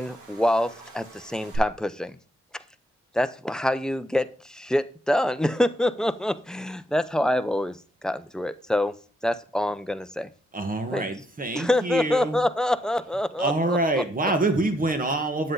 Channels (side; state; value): both; normal; correlation 0.78